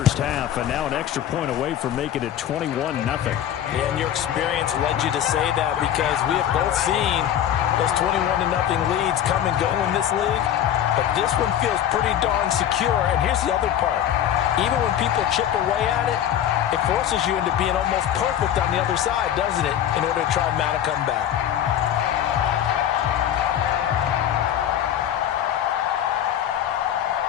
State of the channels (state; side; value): quieter; right; 10.5 dB